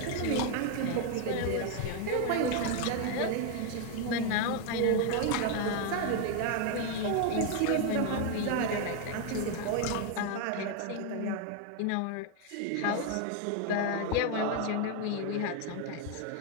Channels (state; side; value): different; both; correlation 0.01